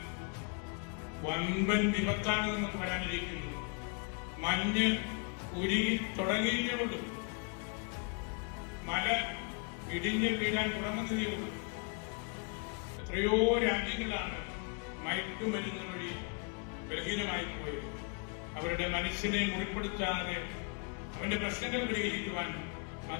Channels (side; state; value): right; quieter; 35.4 dB